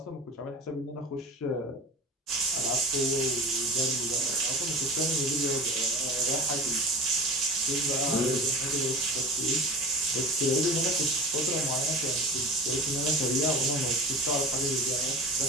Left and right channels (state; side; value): normal; both; correlation 0.35